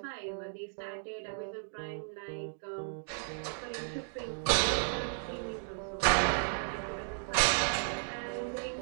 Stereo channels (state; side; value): silent; left; digital silence